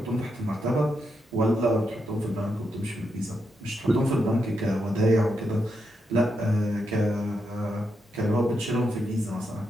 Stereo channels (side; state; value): both; normal; correlation 0.83